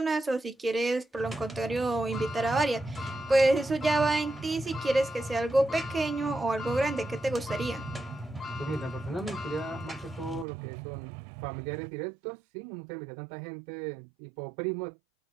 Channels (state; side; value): drops out; left; at 10.5 s